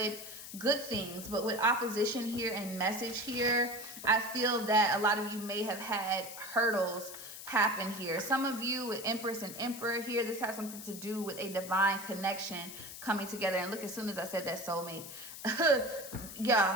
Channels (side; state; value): left; noise; hiss, 11 dB below the sound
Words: things. But with opposition here and message here, I feel that a lot of you may have had hurdles happen here. Some of you with Empress and Emperor here, this has something to do with a divine connection coming together. And look, as soon as I said that, soulmate.